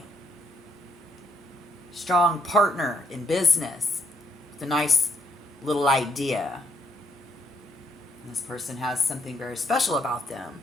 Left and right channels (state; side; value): normal; both; correlation 0.74